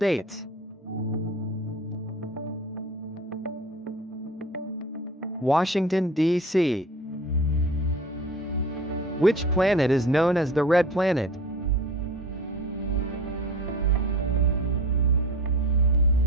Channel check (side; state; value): both; normal; correlation 0.38